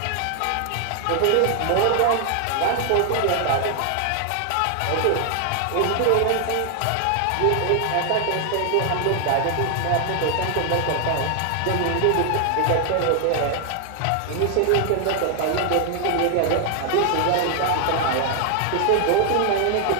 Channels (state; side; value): different; both; correlation 0.00